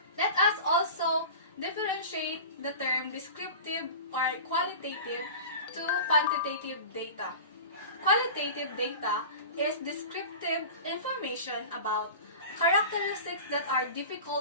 Let us also differentiate the term descriptive or qualitative to quantitative data. Qualitative data is descriptive information about characteristics that are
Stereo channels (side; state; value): both; inverted; correlation -0.34